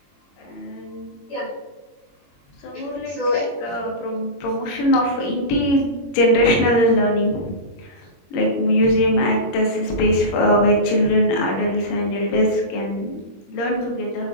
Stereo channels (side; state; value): right; late; 21 ms